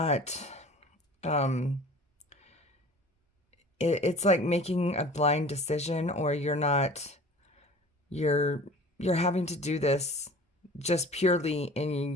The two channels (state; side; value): normal; both; correlation 0.43